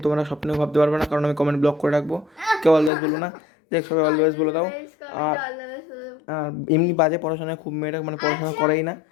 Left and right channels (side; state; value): right; drops out; at 2.9 s